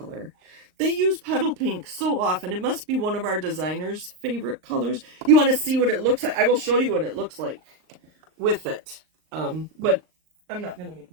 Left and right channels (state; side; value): late; left; 38 ms